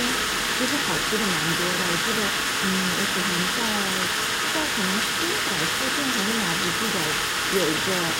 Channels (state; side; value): identical; both; correlation 1.00